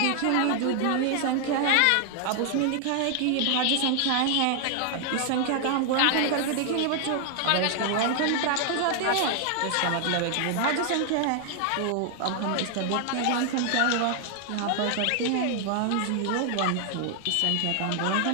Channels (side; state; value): both; different; correlation 0.00